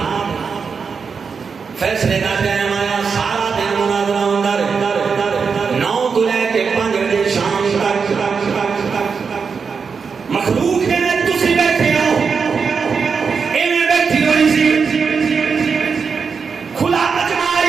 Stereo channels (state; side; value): quieter; left; 5.6 dB